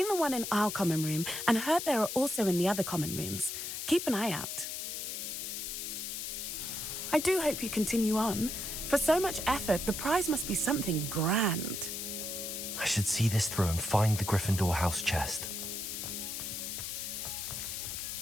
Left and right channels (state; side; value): noise; left; hiss, 5 dB below the sound